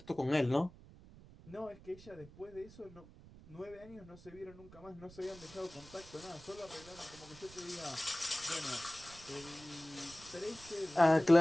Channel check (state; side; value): noise; right; rumble, 20 dB below the sound